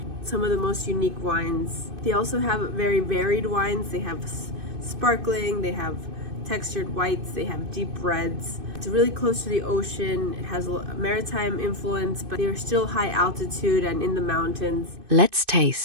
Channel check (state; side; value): late; left; 2.6 ms